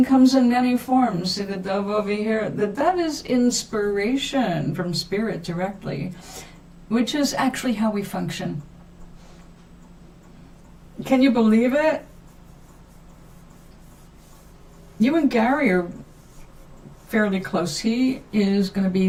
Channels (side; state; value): both; identical; correlation 1.00